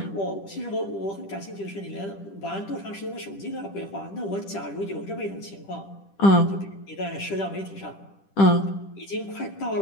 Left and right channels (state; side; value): late; right; 10 ms